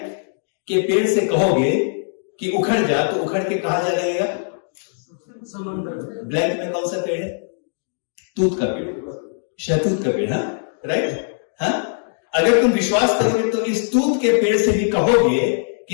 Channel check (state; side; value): silent; right; digital silence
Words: के पेड़ से कहोगे कि उखड़ जा, तो उखड़ के कहा जा लगेगा? ब्लैंक में कौन सा पेड़ है? तूत का पेड़, शहतूत का पेड़। हाँ, राइट। हाँ, अगर तुम विश्वास करोगे तो इस तूत के पेड़ से भी कहोगे